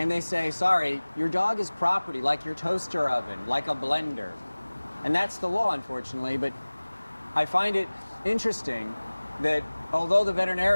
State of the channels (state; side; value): inverted; both; correlation -1.00